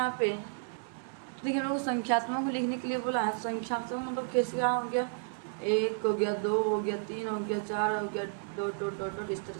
पे, तो देखिए हम लोग संख्यात्मक में लिखने के लिए बोला है। संख्यात्मक मतलब कैसे क्या हो गया, 1 हो गया, 2 हो गया, 3 हो गया, 4 हो गया, डॉट डॉट डॉट डॉट, इस तरह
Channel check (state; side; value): silent; left; digital silence